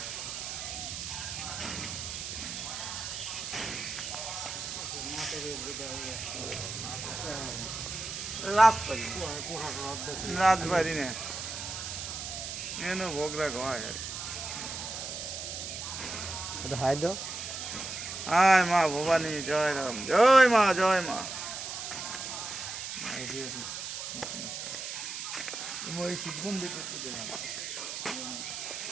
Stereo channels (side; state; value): right; noise; hiss, 6 dB below the sound